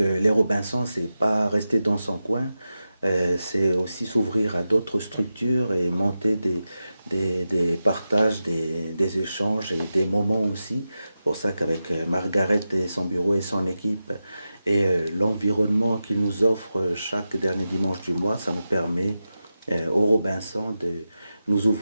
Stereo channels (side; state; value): both; inverted; correlation -0.92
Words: Robinsons, c'est pas rester dans son coin. C'est aussi s'ouvrir à d'autres structures et monter des partages, des échanges et des moments aussi. C'est pour ça qu'avec Margaret et son bureau et son équipe et l'environnement qu'ils nous offrent chaque dernier dimanche du mois, ça nous permet aux Robinsons de nous